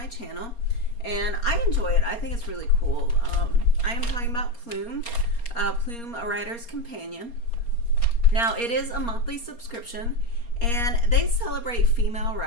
channel and I enjoy it. I think it's really cool. I am talking about Plume, Plume, a writer's companion. Now it is a monthly subscription and they celebrate female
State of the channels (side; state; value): right; late; 4.3 ms